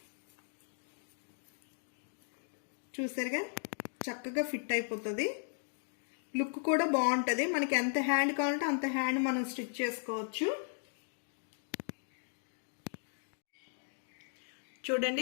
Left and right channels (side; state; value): right; silent; digital silence